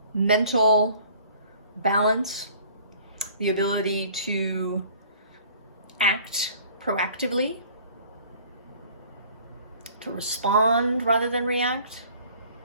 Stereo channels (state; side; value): inverted; both; correlation -0.52